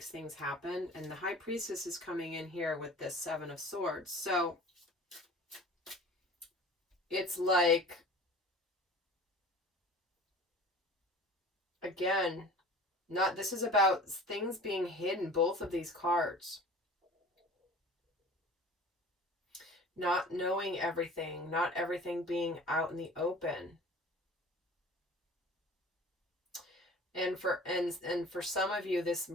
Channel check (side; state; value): both; normal; correlation 0.43